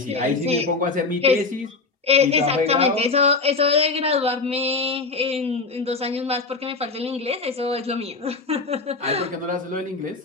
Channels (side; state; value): right; quieter; 4.0 dB